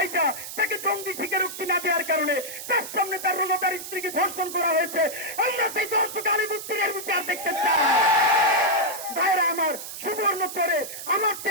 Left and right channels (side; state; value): right; noise; hiss, 9 dB below the sound